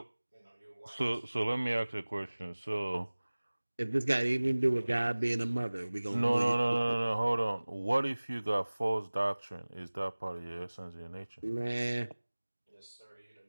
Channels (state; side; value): inverted; both; correlation -1.00